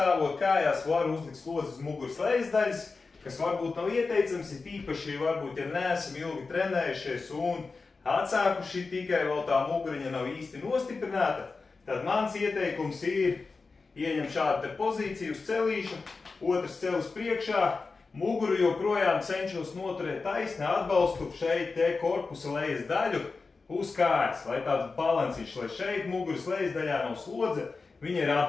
kājās var uzlikt slodzi uz muguras lejas daļas, kas varbūt nav ieteicams, ir īpaši varbūt, ja neesam ilgi trenējušies un atsākuši tikai vēl tā muguriņa nav īsti nostiprināta, tad mans ieteikums ir ieņem šādu te pozīciju uz celīšu, otrs celis priekšā, muguru joprojām cenšos noturēt taisni, atbalstu šeit te korpusa lejas daļu uz kājas, lai tāds balansīšs, lai šeit muguras lejas daļā nav slodze, viņa ir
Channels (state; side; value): quieter; right; 4.2 dB